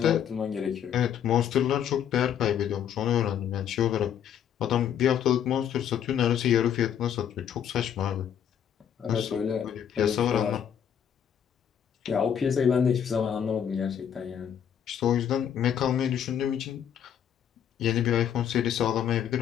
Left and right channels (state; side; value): quieter; right; 9.0 dB